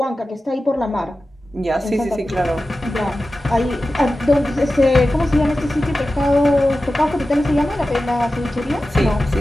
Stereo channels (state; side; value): normal; both; correlation 0.94